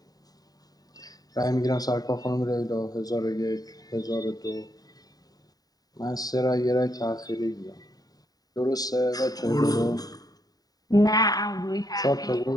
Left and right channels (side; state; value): right; late; 0.18 ms